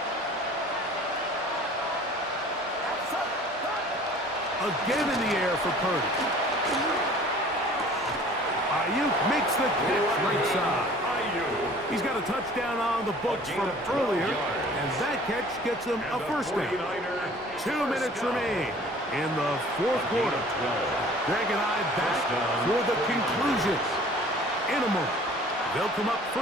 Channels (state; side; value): normal; both; correlation 0.49